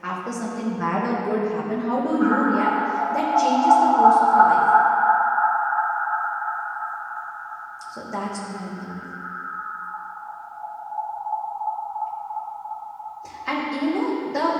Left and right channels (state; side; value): identical; both; correlation 1.00